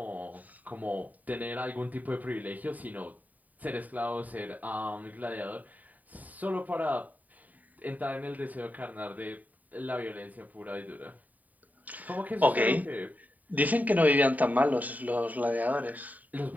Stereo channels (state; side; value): late; left; 0.076 ms